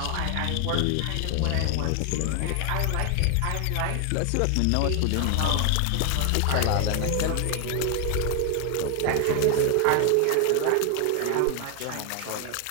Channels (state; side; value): different; both; correlation 0.00